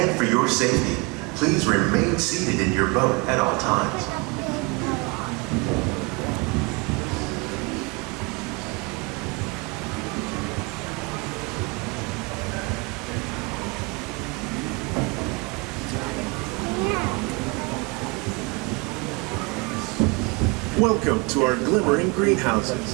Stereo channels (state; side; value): quieter; left; 28.1 dB